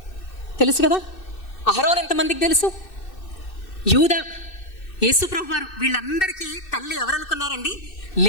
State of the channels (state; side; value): late; right; 2.6 ms